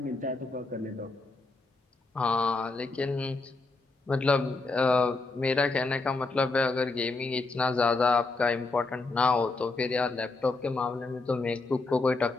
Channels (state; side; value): quieter; right; 3.6 dB